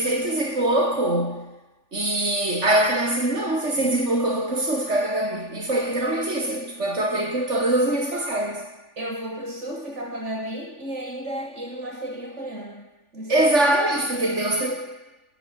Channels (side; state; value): left; late; 3.4 ms